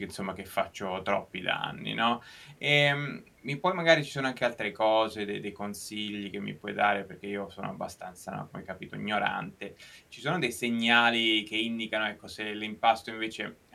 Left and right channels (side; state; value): both; identical; correlation 1.00